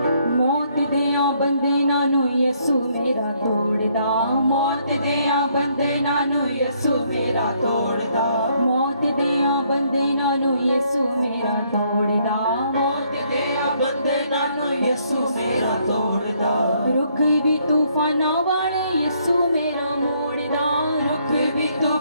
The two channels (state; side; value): inverted; both; correlation -0.69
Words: मौत देया बंधना नु यीशु मेरा तोड़दा मौत देया बंधना नु यीशु मेरा तोड़दा मौत देया बंधना नु यीशु मेरा तोड़दा मौत देया बंधना नु यसु मेरा तोड़दा रुख भी तूफाना वाले यीशु मेरा मोड़दा रुख भी